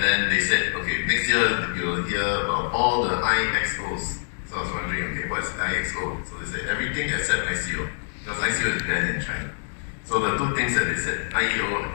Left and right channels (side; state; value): right; silent; digital silence